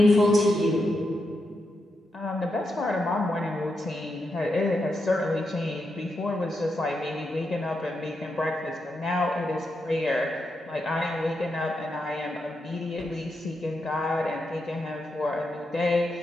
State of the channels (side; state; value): both; normal; correlation 0.85